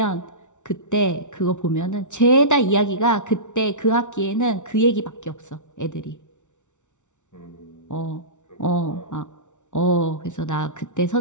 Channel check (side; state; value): right; late; 0.85 ms